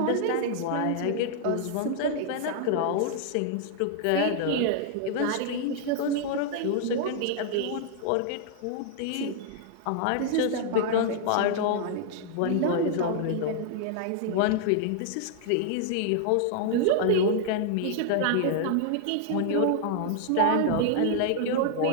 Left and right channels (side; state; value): both; different; correlation -0.01